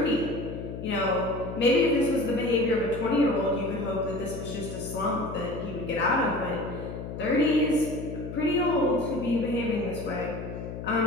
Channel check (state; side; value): noise; left; hum, 8 dB below the sound